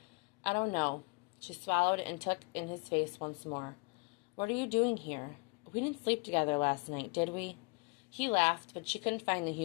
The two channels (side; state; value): right; quieter; 31.9 dB